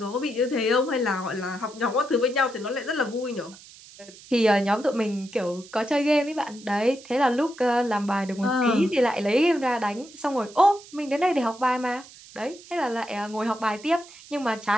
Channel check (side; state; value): right; noise; hiss, 20 dB below the sound